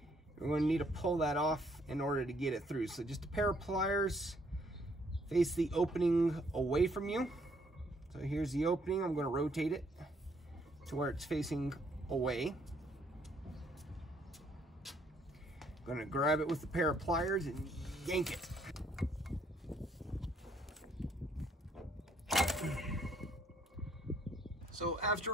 going to need to pull that off in order to get it through. So just a pair of pliers, face the opening away from you. So here's the opening. I'm going to rotate it to where it's facing away. I'm going to grab it with a pair of pliers and yank it. So after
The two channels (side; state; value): both; normal; correlation 0.67